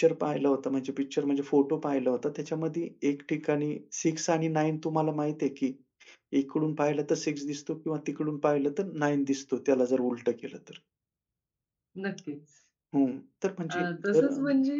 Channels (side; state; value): both; identical; correlation 1.00